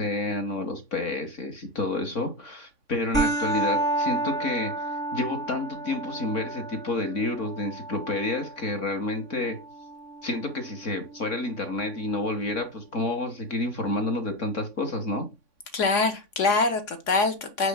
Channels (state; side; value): late; right; 3.6 ms